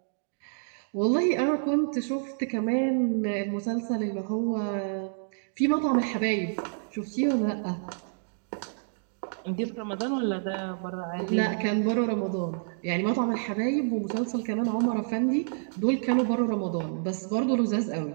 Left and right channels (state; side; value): silent; left; digital silence